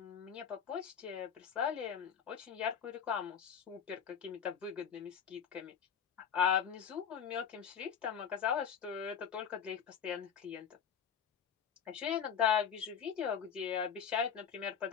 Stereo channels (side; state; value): right; quieter; 7.7 dB